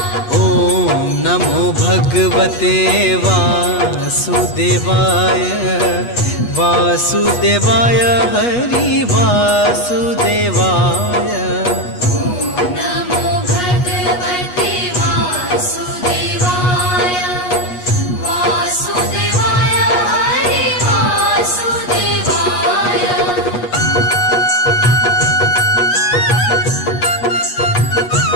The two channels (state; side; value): late; right; 8.3 ms